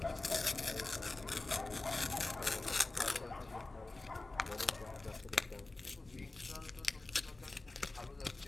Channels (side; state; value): right; quieter; 3.1 dB